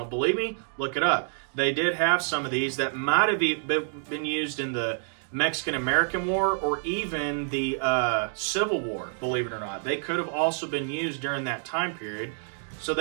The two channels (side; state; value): left; silent; digital silence